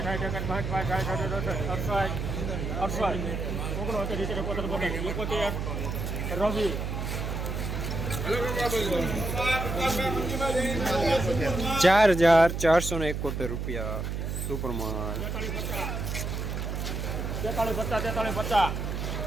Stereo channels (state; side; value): noise; right; hum, 3 dB below the sound